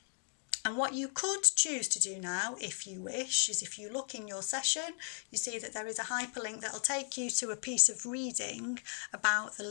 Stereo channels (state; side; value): silent; right; 54 dB below the other